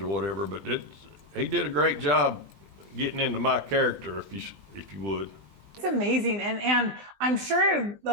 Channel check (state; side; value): late; left; 20 ms